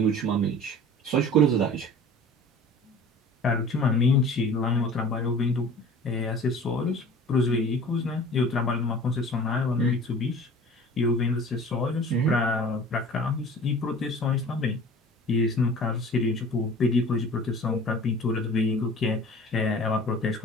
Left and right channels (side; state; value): both; normal; correlation 0.43